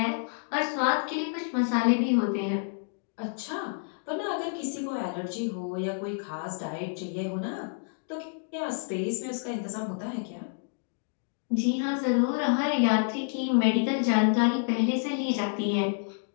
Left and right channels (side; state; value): right; silent; digital silence